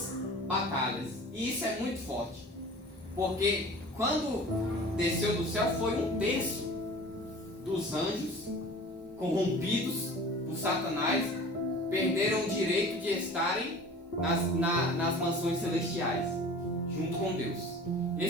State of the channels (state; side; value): normal; both; correlation 0.42